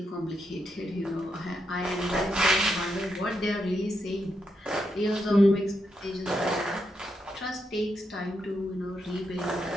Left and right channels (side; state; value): both; normal; correlation 0.82